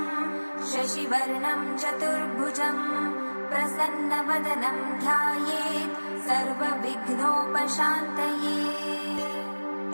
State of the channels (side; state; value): both; inverted; correlation -1.00